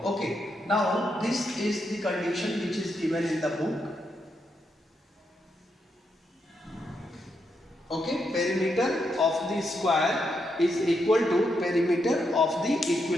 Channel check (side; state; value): both; normal; correlation 0.81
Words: Okay, now this is the condition which is given in the book. Okay, perimeter of the square is equal to perimeter of the